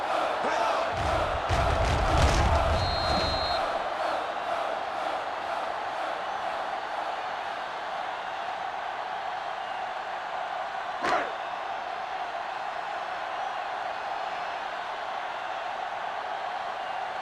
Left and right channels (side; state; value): both; identical; correlation 1.00